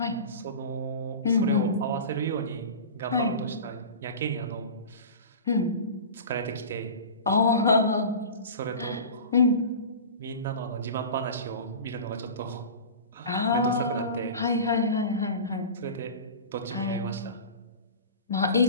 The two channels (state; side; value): inverted; both; correlation -0.34